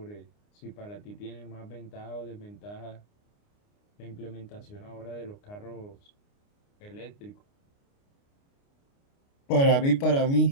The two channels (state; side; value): late; right; 29 ms